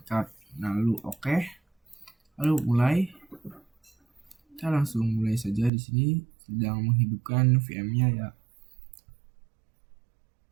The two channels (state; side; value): drops out; left; at 5.7 s